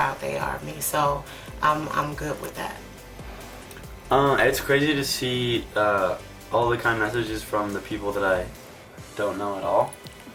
they are of me. So I'm good with that. It's crazy to see all the kind messages from the people that I don't know at all.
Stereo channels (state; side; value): identical; both; correlation 1.00